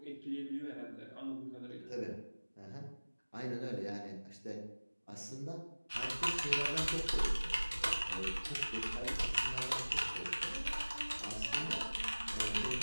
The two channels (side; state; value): both; inverted; correlation -1.00